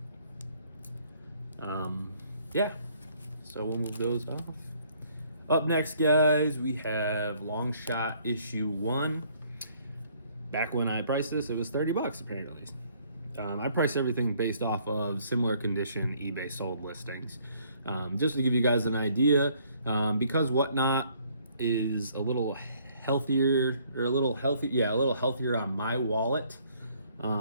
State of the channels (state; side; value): inverted; both; correlation -0.63